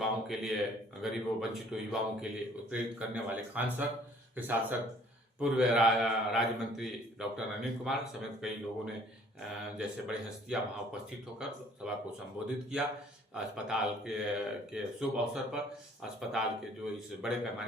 के लिए, गरीबों वंचितों युवाओं के लिए उत्प्रेरित करने वाले खान सर के साथ साथ पूर्व राज्य मंत्री डॉक्टर अनिल कुमार समेत कई लोगों ने जैसे बड़ी हस्तियां वहां उपस्थित होकर सभा को संबोधित किया। अस्पताल के शुभ अवसर पर अस्पताल के जो इस बड़े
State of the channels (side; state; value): both; normal; correlation 0.57